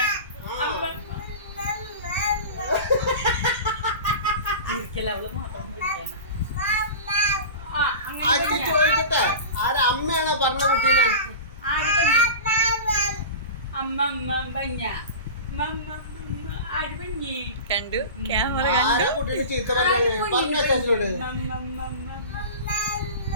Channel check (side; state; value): both; inverted; correlation -0.32